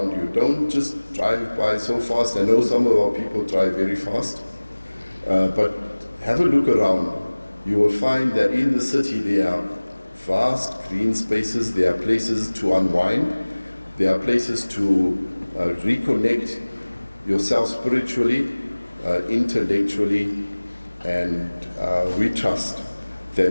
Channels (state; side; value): inverted; both; correlation -1.00